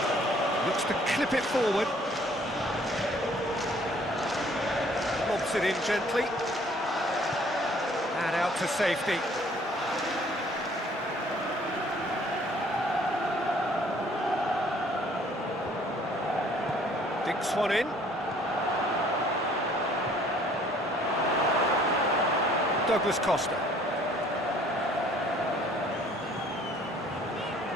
Looks to clip it forward. Lobs it in gently. And out to safety. Dinks one in. Douglas Costa.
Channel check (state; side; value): normal; both; correlation 0.58